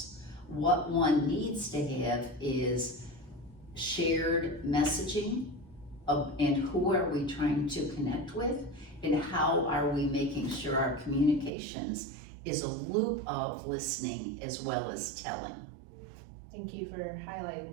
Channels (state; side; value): drops out; left; at 11.5 s